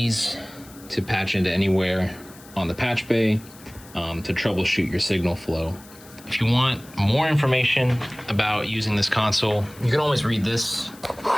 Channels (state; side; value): noise; left; hiss, 22 dB below the sound